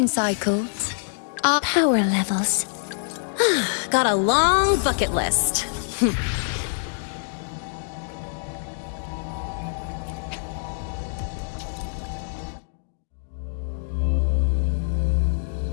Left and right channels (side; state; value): right; silent; digital silence